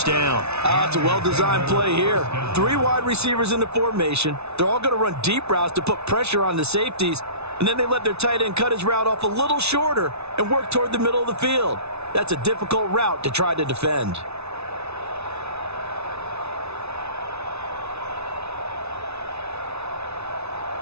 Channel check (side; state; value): left; late; 0.81 ms